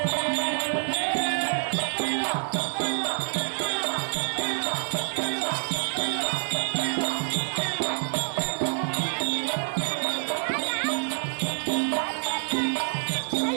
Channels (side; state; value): left; silent; digital silence